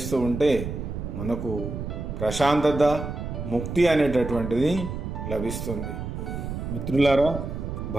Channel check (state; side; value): noise; right; rumble, 6 dB below the sound